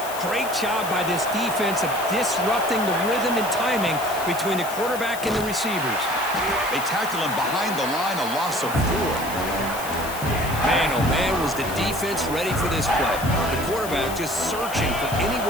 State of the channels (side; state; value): left; noise; hiss, 11 dB below the sound